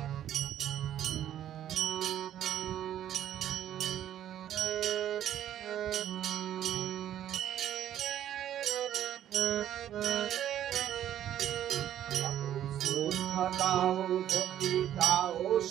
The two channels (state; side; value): quieter; left; 11.2 dB